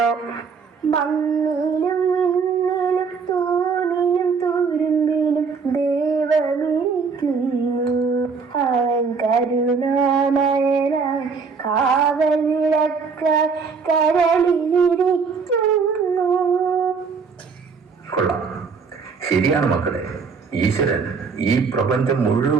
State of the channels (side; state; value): left; quieter; 5.3 dB